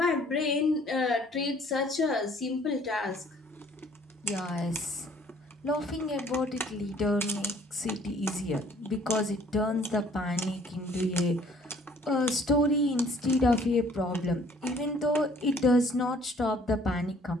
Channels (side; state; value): both; normal; correlation 0.57